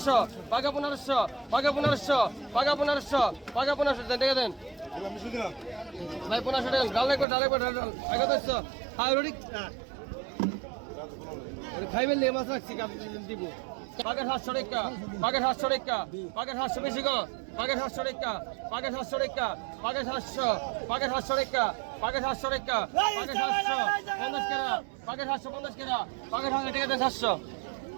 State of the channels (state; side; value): drops out; left; at 7.2 s